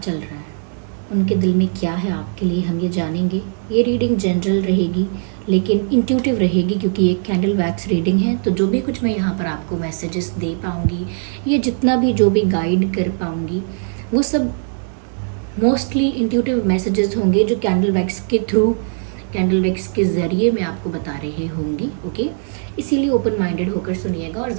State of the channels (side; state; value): left; silent; digital silence